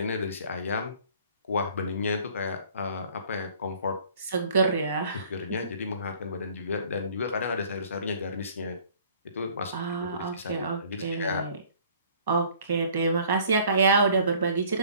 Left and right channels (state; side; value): inverted; both; correlation -0.54